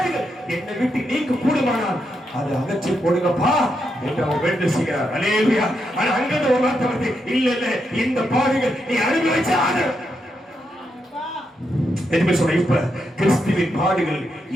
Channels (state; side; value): normal; both; correlation 0.82